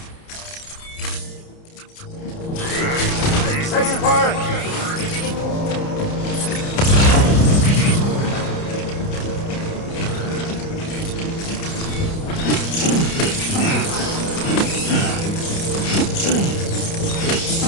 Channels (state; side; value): late; right; 30 ms